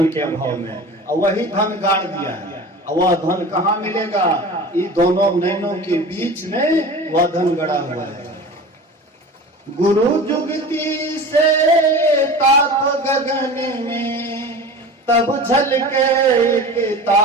के अभाव में, और वही धन गाड़ दिया है। और वह धन कहाँ मिलेगा? ये दोनों नैनों के बीच में वह धन गड़ा हुआ है। गुरु जुगती से ताप गगन में, तब झलके एक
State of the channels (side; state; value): both; normal; correlation 0.36